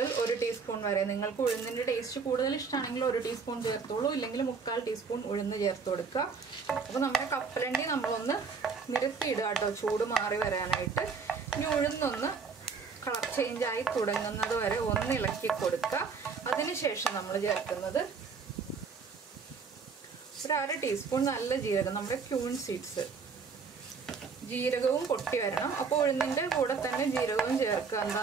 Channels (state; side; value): quieter; left; 5.3 dB